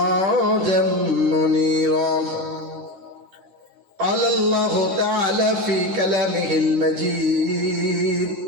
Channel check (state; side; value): late; left; 10 ms